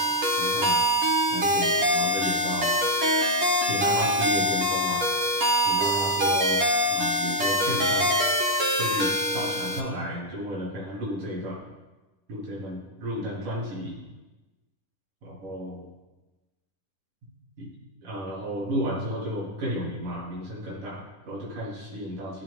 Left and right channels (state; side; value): late; left; 10 ms